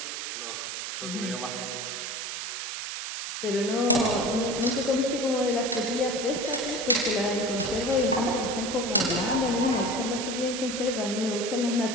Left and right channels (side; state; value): right; noise; hiss, 5 dB below the sound